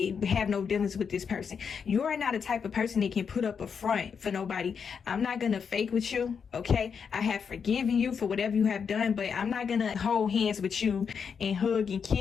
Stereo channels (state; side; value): quieter; right; 6.5 dB